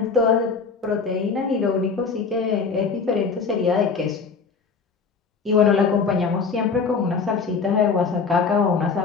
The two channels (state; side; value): quieter; right; 5.2 dB